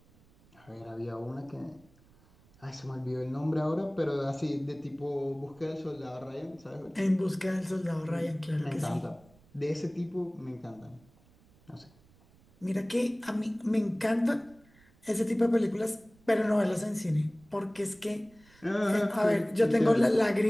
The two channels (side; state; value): right; noise; rumble, 29 dB below the sound